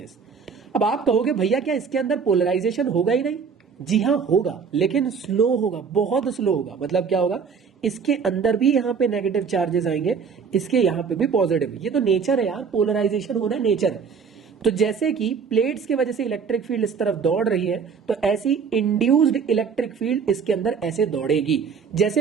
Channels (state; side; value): quieter; left; 6.0 dB